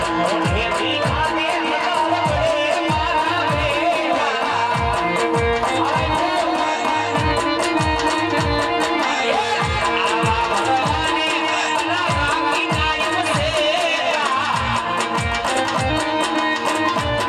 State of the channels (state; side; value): identical; both; correlation 1.00